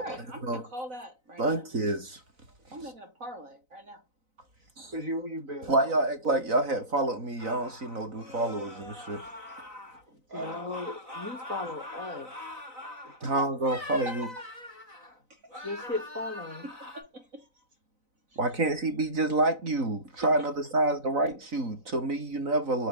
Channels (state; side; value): late; left; 4.0 ms